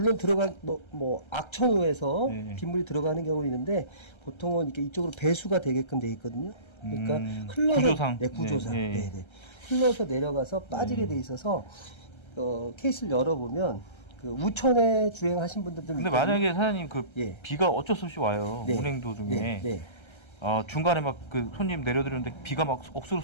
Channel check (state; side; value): late; right; 1.3 ms